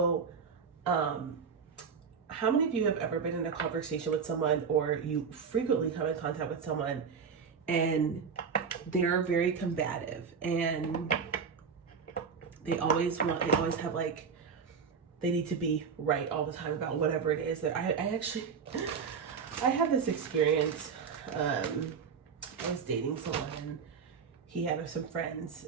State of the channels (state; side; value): quieter; left; 6.1 dB